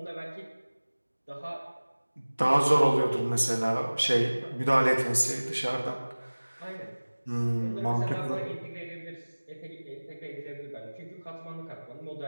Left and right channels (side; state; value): both; inverted; correlation -1.00